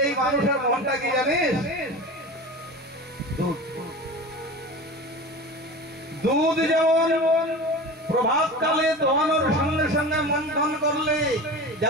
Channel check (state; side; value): normal; both; correlation 0.32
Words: এই মানুষের মনটা কি জানিস? দুধ। দুধ যেমন প্রভাতকালে দোহানোর সঙ্গে সঙ্গে মন্থন করলে